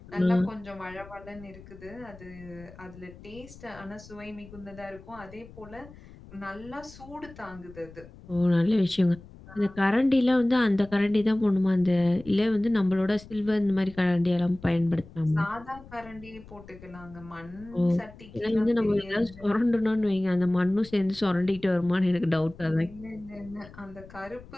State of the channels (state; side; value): noise; left; rumble, 20 dB below the sound